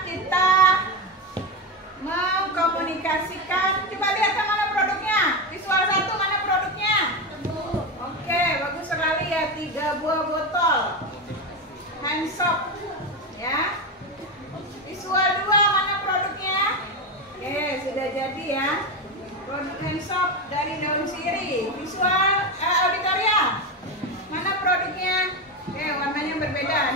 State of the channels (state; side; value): normal; both; correlation 0.15